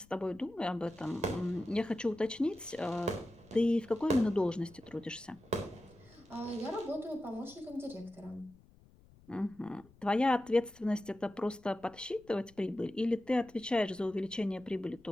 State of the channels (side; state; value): left; noise; rumble, 26 dB below the sound